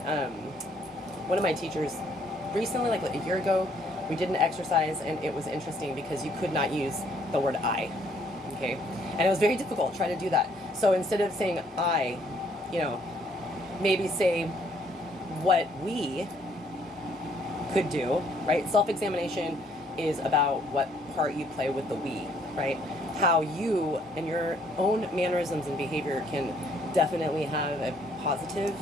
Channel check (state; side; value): normal; both; correlation 0.65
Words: One of my teachers recently, like a year ago, we did an exercise, and it was interesting because you could not use the word I, okay? And it was very difficult trying to do that. So instead of saying I, you know, maybe say what we could do, right? Self-examination is about what part you play with the we, right? How you and your own mannerisms and behavior can definitely have a positive